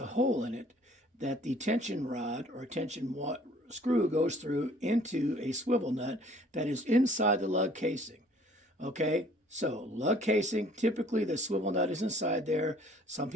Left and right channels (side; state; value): both; normal; correlation 0.56